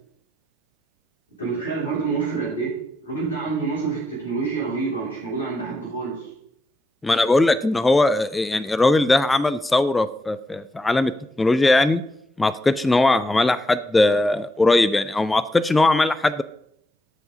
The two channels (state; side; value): normal; both; correlation 0.84